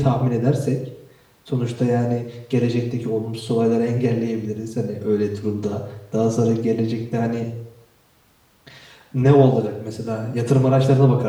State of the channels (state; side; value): identical; both; correlation 1.00